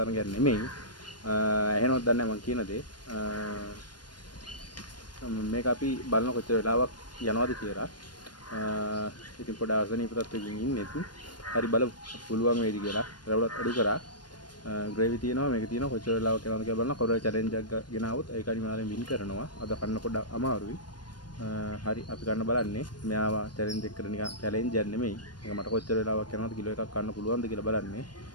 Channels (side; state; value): right; late; 0.71 ms